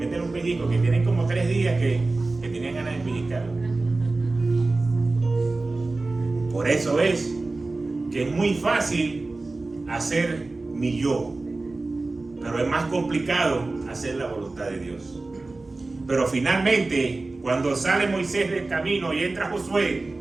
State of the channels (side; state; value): left; quieter; 3.3 dB